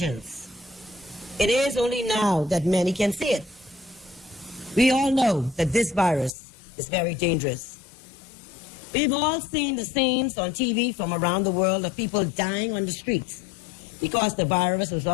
It is only now that many can see it. We all know that this virus is very dangerous. We've all seen the scenes on TV from around the world of people dying on the streets because the virus was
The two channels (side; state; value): right; drops out; at 6.3 s